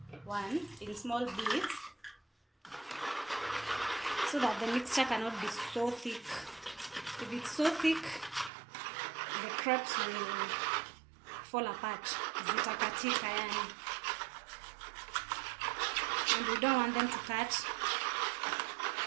1 in small bits so that the mixture cannot be so thick. If it's so thick, the crepes will fall apart. Zitakatika yani. And we don't want them to cut.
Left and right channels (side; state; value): left; drops out; at 8.5 s